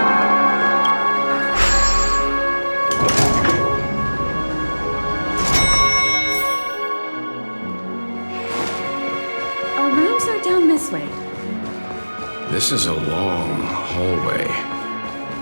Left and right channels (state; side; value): inverted; both; correlation -1.00